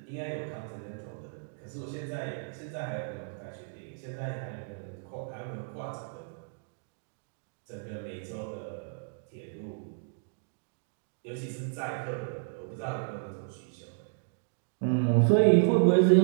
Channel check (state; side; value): silent; left; digital silence